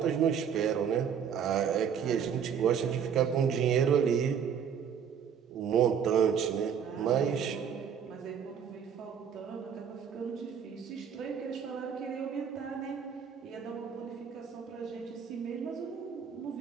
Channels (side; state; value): left; quieter; 7.6 dB